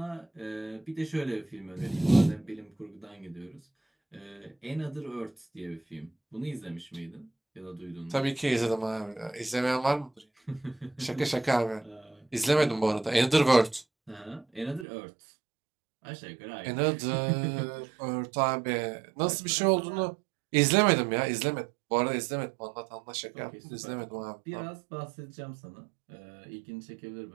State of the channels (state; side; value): drops out; left; at 14.9 s